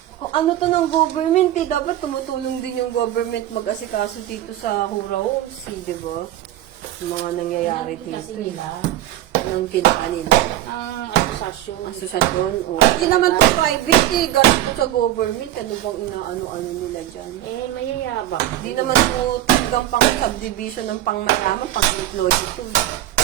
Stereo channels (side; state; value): left; quieter; 13.6 dB